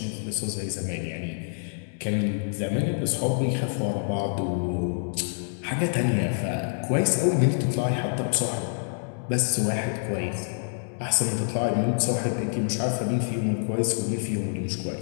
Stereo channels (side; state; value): right; silent; digital silence